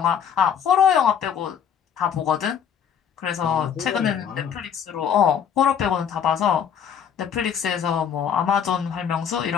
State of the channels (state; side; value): quieter; right; 8.1 dB